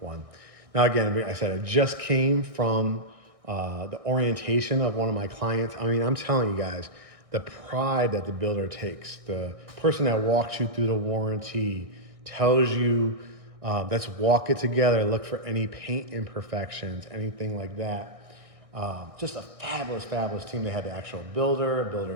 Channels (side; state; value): left; late; 1.6 ms